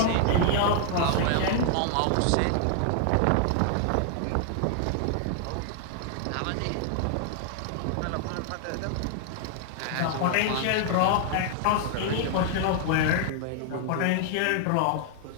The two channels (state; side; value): different; both; correlation 0.00